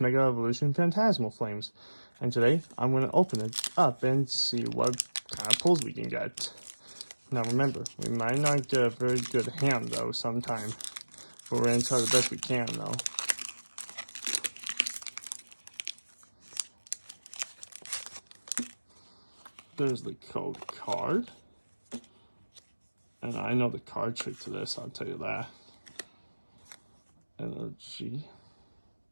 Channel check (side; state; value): both; inverted; correlation -1.00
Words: Evolution Phantasmal Flames. And today I'm going to open it up and see what kind of pulls we can get. Now remember, we might not get a very good hand though sometime. But we're going to try the best we can though. There's the code card. And I know the card trick to this, I'll tell you that. Energy.